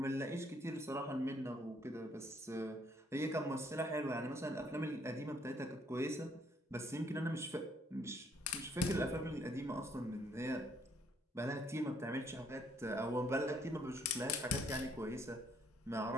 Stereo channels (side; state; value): both; normal; correlation 0.67